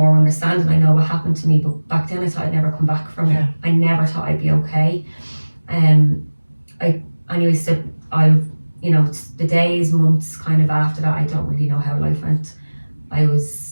understanding, I know what happened to me, but back then I thought I'd never come back from it. I never thought I'd be okay. The days, months kind of after that, I don't really know how life went. I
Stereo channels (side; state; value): both; inverted; correlation -1.00